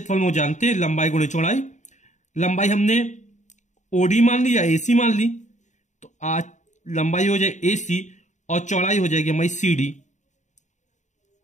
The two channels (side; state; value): right; late; 0.35 ms